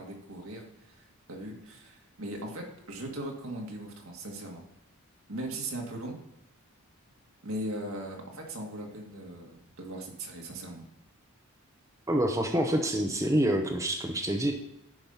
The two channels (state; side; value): normal; both; correlation 0.63